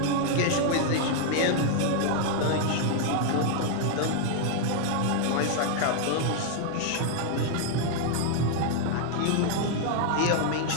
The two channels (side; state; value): both; different; correlation 0.00